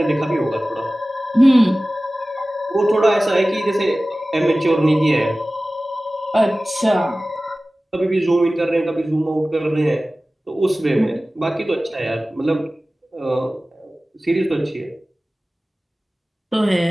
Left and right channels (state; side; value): normal; both; correlation 0.97